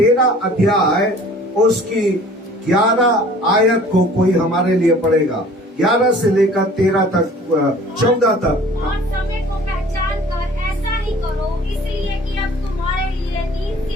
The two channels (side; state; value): both; normal; correlation 0.49